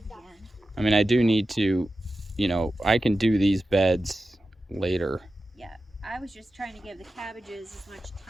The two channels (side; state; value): both; normal; correlation 0.93